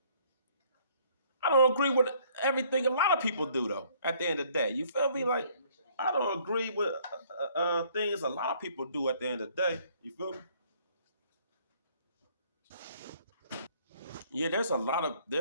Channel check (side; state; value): both; inverted; correlation -0.61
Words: I don't agree with everything a lot of people do, though, at the end of the day. You feel me? Like, I don't agree with things a lot of people do at the end of the day. You feel me? Yeah, there's a